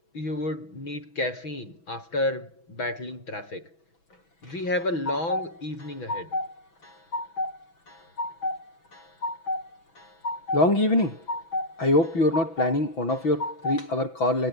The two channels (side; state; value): right; late; 6.1 ms